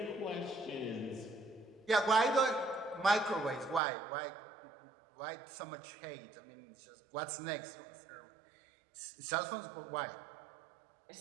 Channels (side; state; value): left; drops out; at 3.8 s